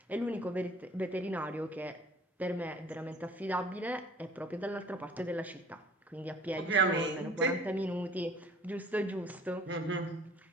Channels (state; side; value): normal; both; correlation 0.50